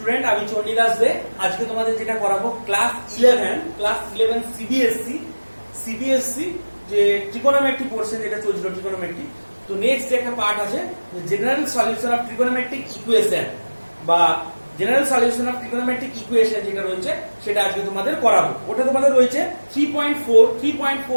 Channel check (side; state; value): both; inverted; correlation -1.00